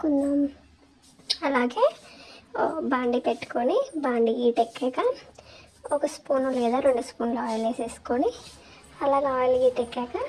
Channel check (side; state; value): both; identical; correlation 1.00